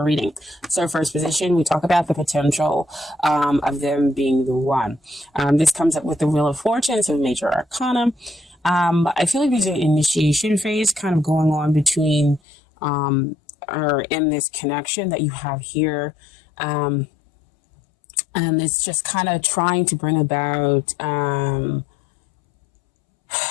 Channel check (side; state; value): right; drops out; at 12.4 s